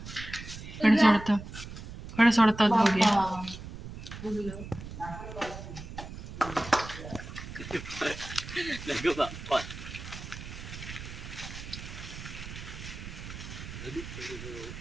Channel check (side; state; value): right; noise; rumble, 11 dB below the sound